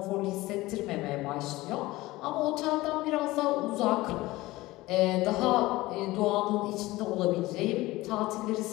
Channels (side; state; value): right; quieter; 19.0 dB